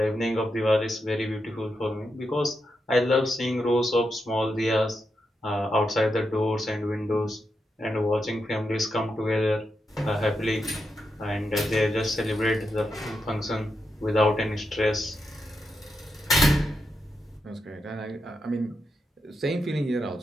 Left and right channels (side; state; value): both; normal; correlation 0.85